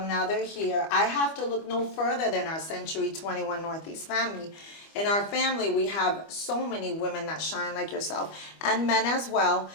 now they're here. I have to look no further than our Century 21 Northeast family. In our family, we have so many women that shine like yourself, and men as well.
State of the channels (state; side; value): late; right; 25 ms